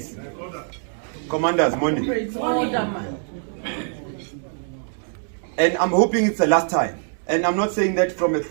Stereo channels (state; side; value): silent; left; 60 dB below the other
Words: Commanders, morning. And I'm hoping it's the last time. And I'm not saying that from a